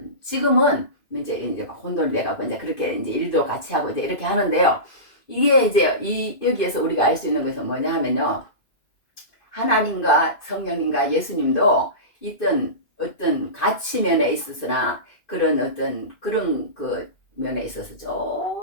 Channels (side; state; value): right; late; 2.5 ms